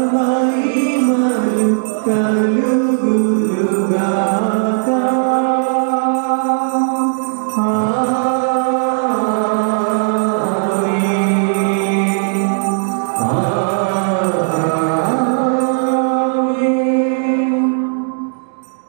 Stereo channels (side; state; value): left; silent; digital silence